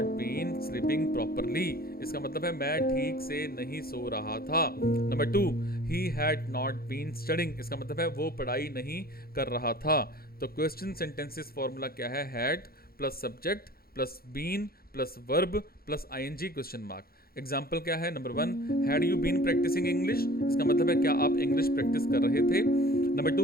been sleeping properly. इसका मतलब है मैं ठीक से नहीं सो रहा था। Number 2, he had not been studying. इसका मतलब है वो पढ़ाई नहीं कर रहा था। तो क्वेश्चन सेंटेंसेस फॉर्मूला क्या है? Had plus subject plus been plus verb plus ING question mark. Example क्या है? Number 1, had you been practising English. इसका मतलब है क्या आप इंग्लिश प्रैक्टिस कर रहे थे। Number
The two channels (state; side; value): late; right; 0.44 ms